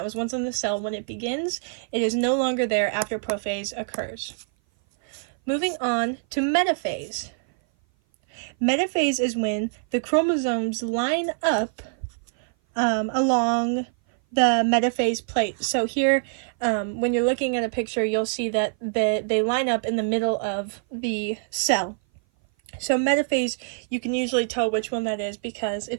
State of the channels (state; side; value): silent; left; 57 dB below the other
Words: was once in the cell, when it begins, it is no longer there after prophase occurs. Moving on to metaphase. Metaphase is when the chromosomes line up along the metaphase plate. So here, when you're looking at a picture, you'll see that they line up in the middle of the cell. So metaphase, you can usually tell which one that is because